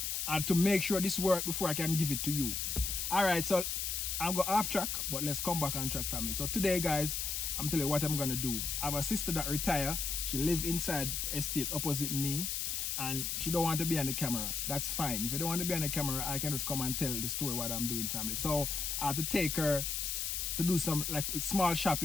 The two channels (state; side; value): noise; left; hiss, 1 dB below the sound